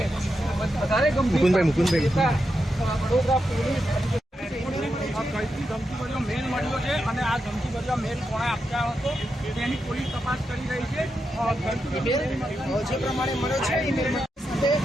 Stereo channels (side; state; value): both; normal; correlation 0.86